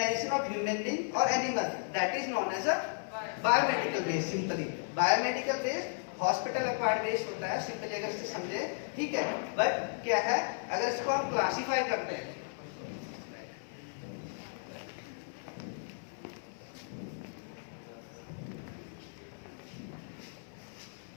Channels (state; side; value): silent; right; 55 dB below the other